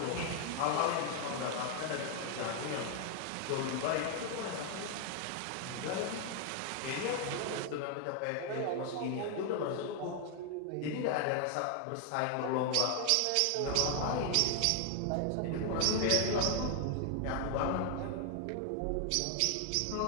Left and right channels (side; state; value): both; different; correlation 0.00